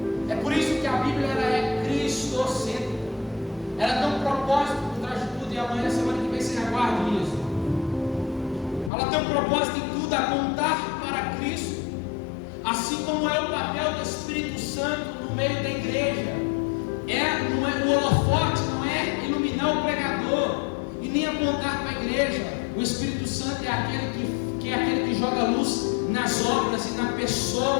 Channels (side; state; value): right; drops out; at 8.9 s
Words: É por isso que a Bíblia ela é cristocêntrica. Ela tem um propósito por trás de tudo, e amanhã, semana que vem, você aguarde isso. Ela tem um propósito em tudo, apontar para Cristo, assim como é o papel do Espírito Santo no meio da igreja. Não é o holofote, não é iluminar o pregador e nem apontar para a igreja. O Espírito Santo é aquele que joga luz nas obras e na